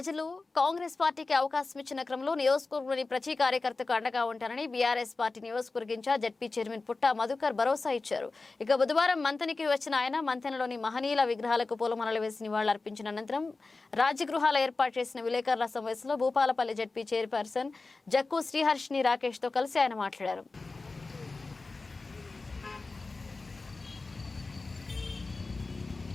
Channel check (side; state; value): right; quieter; 3.7 dB